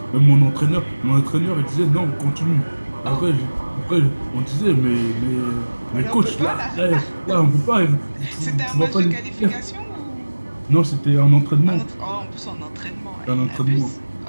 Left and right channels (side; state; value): both; inverted; correlation -1.00